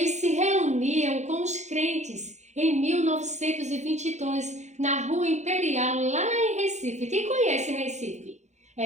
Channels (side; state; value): left; late; 0.33 ms